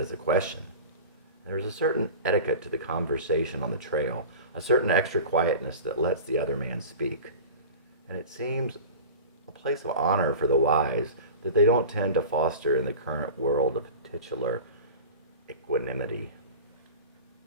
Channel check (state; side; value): inverted; both; correlation -0.35